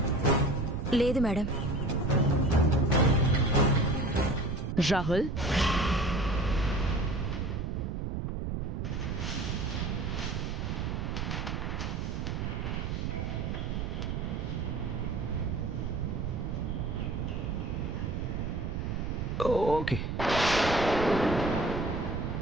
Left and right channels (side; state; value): right; noise; rumble, 2 dB below the sound